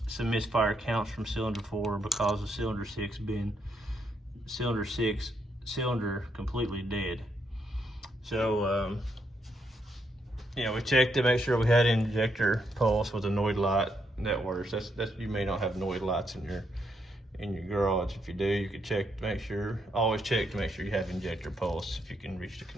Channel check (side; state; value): both; normal; correlation 0.77